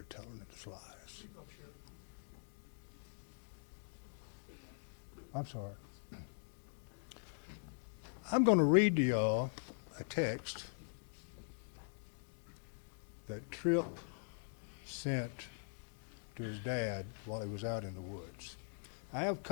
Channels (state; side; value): silent; right; digital silence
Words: telling it lies. I'm sorry. I'm going to read to y'all a text that Trip sent to his dad while he was out in the woods. I have